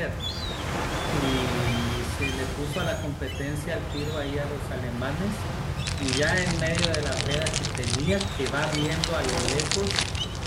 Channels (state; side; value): identical; both; correlation 1.00